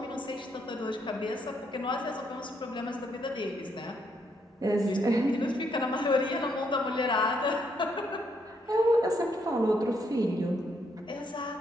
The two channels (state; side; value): normal; both; correlation 0.74